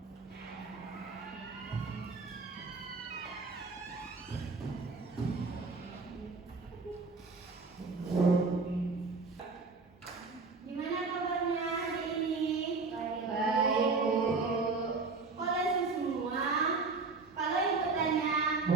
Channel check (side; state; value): left; quieter; 4.2 dB